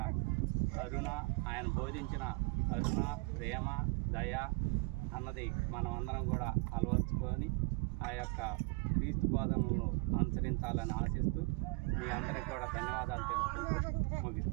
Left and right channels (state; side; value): quieter; left; 28.9 dB